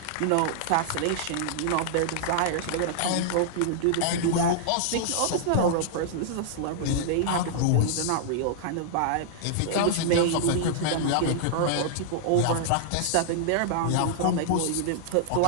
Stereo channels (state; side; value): different; both; correlation -0.01